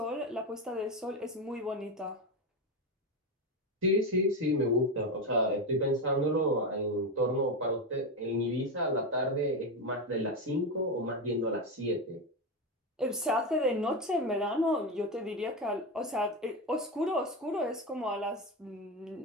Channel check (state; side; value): normal; both; correlation 0.14